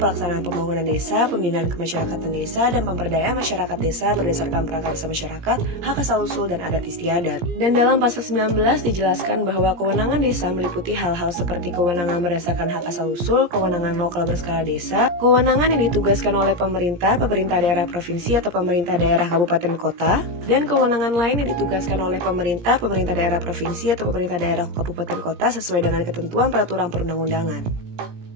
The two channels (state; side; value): late; left; 17 ms